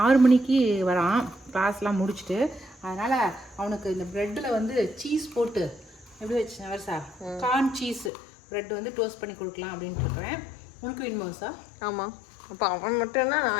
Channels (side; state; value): right; drops out; at 8.1 s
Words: மணிக்கு வரான் கிளாஸ்லாம் முடிச்சுட்டு. அதனால் அவனுக்கு இந்த ப்ரெட்டில் வந்து சீஸ் போட்டு எப்படி வச்சு வருஷா கார்ன் சீஸ் ப்ரெட் வந்து டோஸ்ட் பண்ணி கொடுக்கலாம் அப்படின்ட்டு இருக்கிறேன். உனக்கு வேணுமா வருஷா? ஆமாம். அப்போ அவன் மட்டும்னா